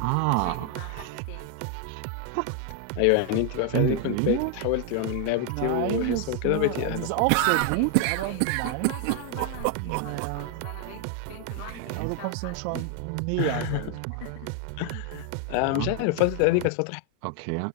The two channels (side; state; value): both; different; correlation 0.00